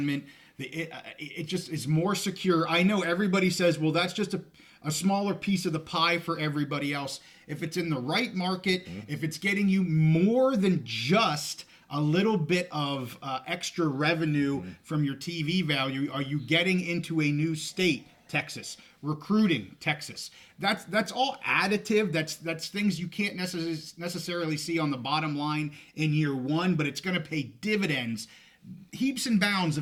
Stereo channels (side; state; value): both; identical; correlation 1.00